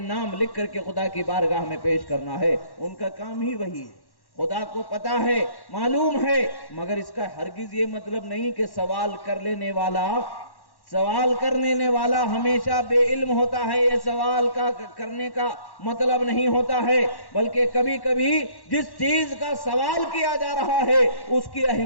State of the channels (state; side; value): late; right; 1.1 ms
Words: نام لکھ کر کے خدا کی بارگاہ میں پیش کرنا ہے۔ ان کا کام ہی وہی ہے، خدا کو پتا ہے، معلوم ہے، مگر اس کا ہرگز یہ مطلب نہیں کہ سوال کرنے والا ہمیشہ بے علم ہوتا ہے، یہ سوال کرنے کا مطلب نہیں ہوتا ہے، بلکہ کبھی کبھی جس چیز کا سوال کیا جا رہا ہے اس کی